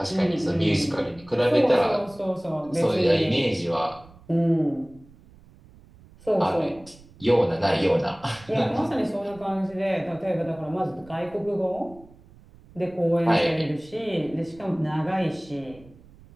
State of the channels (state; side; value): noise; right; rumble, 24 dB below the sound